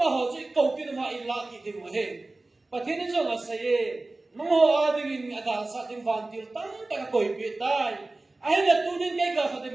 họ chỉ cầu tin mà ít lạ cái điều mà hết và thế nên cho là sẽ nó họ đi ada sa tim vantil tam tại coi biết tai ai là tu nên cái gặp phải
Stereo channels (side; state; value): left; quieter; 3.1 dB